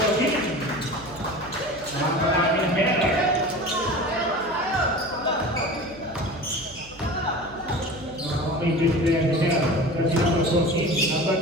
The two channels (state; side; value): noise; right; hum, 22 dB below the sound